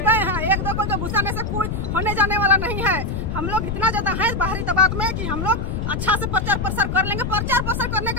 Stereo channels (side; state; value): left; noise; rumble, 3 dB below the sound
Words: गए हैं, एक दो को जो घुसाने से कोई होने जाने वाला नहीं है। हम लोग इतना ज्यादा है बाहरी दबाव में कि हम लोग अच्छा से प्रचार प्रसार कर लेंगे। प्रचार प्रसार करने